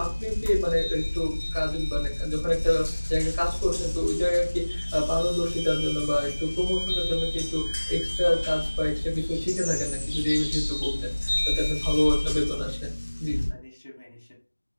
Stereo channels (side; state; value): both; inverted; correlation -1.00